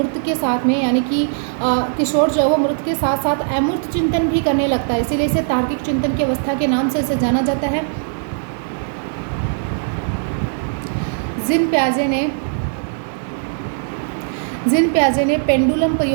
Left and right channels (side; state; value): left; silent; 62 dB below the other